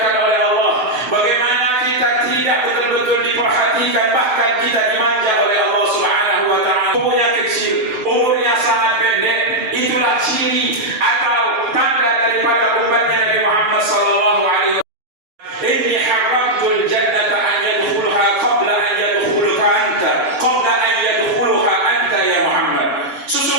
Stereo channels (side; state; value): left; late; 7.7 ms